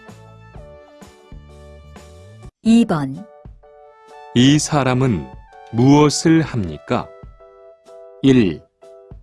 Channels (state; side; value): identical; both; correlation 1.00